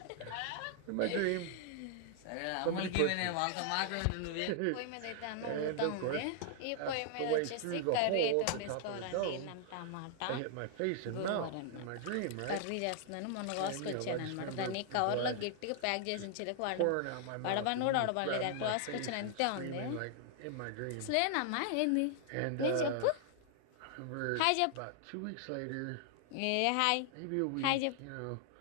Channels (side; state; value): both; different; correlation 0.00